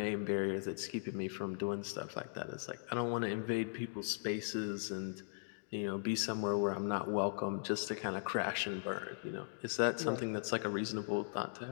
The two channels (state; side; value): silent; right; digital silence